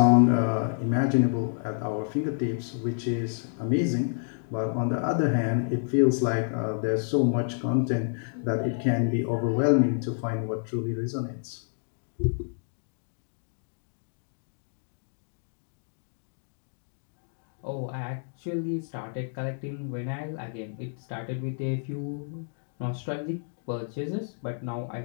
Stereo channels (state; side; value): silent; right; digital silence